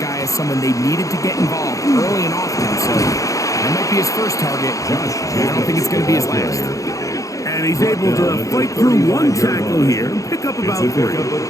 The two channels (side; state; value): right; late; 0.16 ms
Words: as someone they needed to get involved early and often. So that might be his first target. I don't think it's going to be his last. And he's able to fight through one tackle here and pick up about 3.